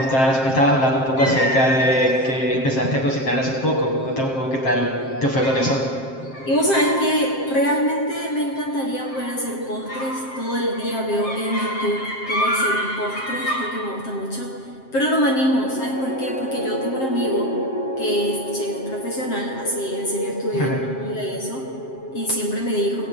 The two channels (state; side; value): late; right; 7.6 ms